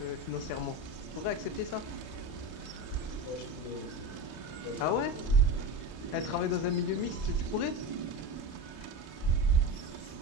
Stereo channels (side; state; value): right; late; 31 ms